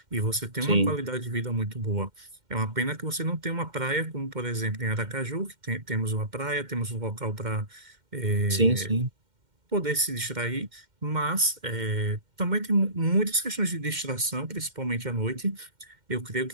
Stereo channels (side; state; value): left; late; 2.1 ms